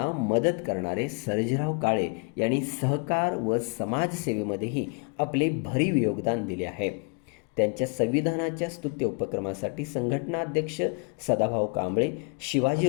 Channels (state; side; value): quieter; right; 37.0 dB